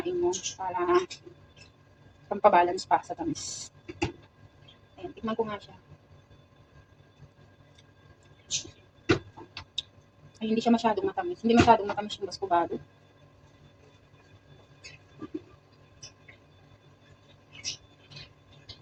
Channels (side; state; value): both; identical; correlation 1.00